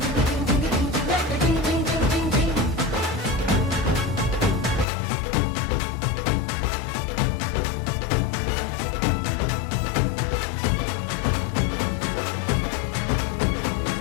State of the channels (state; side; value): drops out; right; at 4.9 s